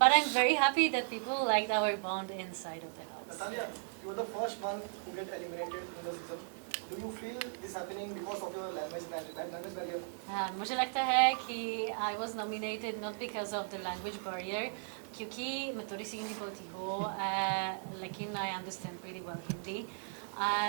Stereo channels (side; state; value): left; silent; digital silence